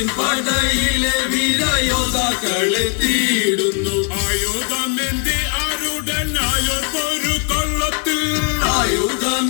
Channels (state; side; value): quieter; right; 39.1 dB